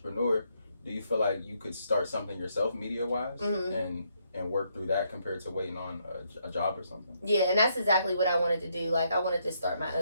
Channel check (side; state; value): both; inverted; correlation -0.75